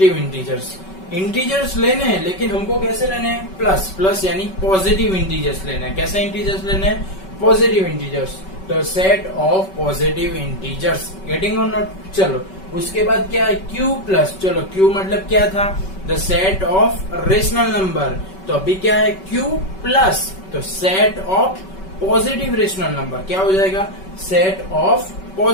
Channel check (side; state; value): right; late; 5.3 ms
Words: integers, integers लेने हैं लेकिन हमको कैसे लेने हैं, प्लस, प्लस यानी पॉजिटिव इंटीजर्स लेने हैं। कैसे इंटीजर्स लेने हैं, पॉजिटिव इंटीजर्स, तो set of positive integers, getting और नॉट। चलो उसके बाद क्या है, क्यू प्लस, चलो क्यू मतलब क्या था, the set of rational number, तो अभी क्या है, क्यू प्लस, तो set of positive rational number, क्या हो जाएगा, set of